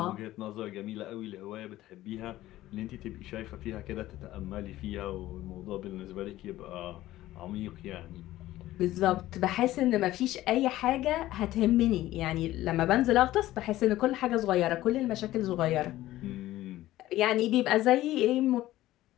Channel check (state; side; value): quieter; right; 15.4 dB